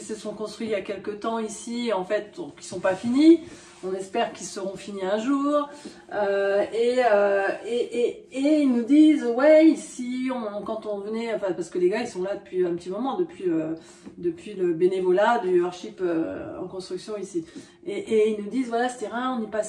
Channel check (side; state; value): both; identical; correlation 1.00